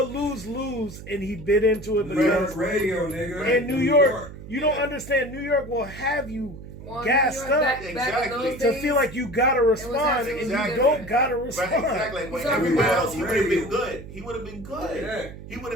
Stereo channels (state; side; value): noise; right; hum, 14 dB below the sound